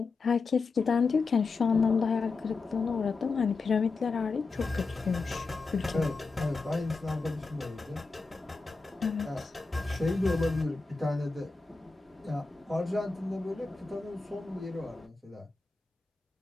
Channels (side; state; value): right; quieter; 4.1 dB